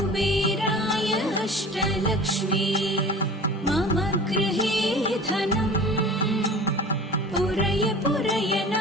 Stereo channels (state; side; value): normal; both; correlation 0.40